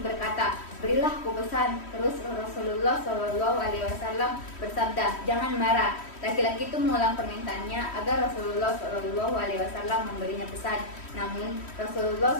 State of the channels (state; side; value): late; right; 3.1 ms